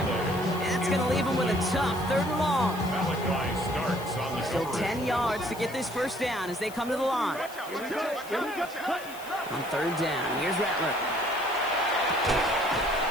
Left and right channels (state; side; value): noise; left; hiss, 17 dB below the sound